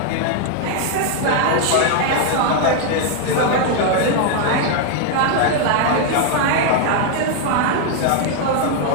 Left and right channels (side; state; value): both; different; correlation 0.00